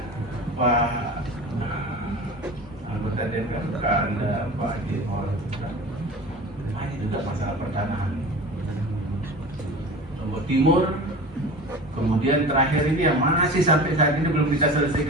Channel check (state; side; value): normal; both; correlation 0.35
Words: Pak anggota DPR ada Pak Jimor, ini juga masalah pertanahan. Lombok Timur. Kemudian terakhir ini yang masih sampai saat ini belum bisa